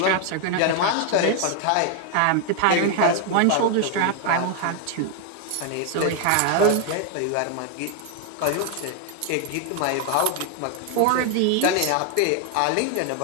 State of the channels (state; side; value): different; both; correlation 0.00